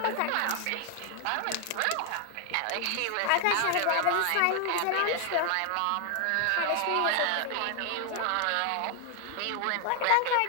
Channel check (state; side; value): different; both; correlation 0.00